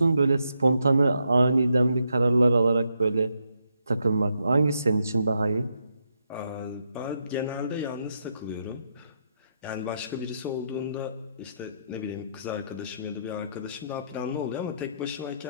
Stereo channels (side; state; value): both; inverted; correlation -0.80